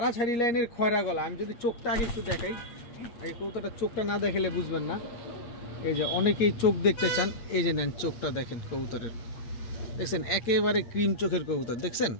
লাইনের খয়রা গলা। আমি যদি চোখটা আগে একটু দেখাই, এই কবুতরটা চোখটা না দেখালে বুঝবেন না। এই যে অনেকেই চোখ দেখতে চান, এই যে নেন চোখটা দেখেন কবুতরের, দেখছেন একেবারে ক্রিম চোখের কবুতর, দেখছেন।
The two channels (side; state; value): right; late; 8.5 ms